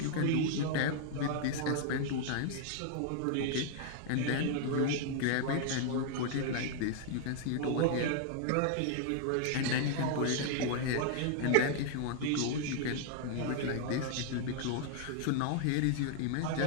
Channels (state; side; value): different; both; correlation 0.00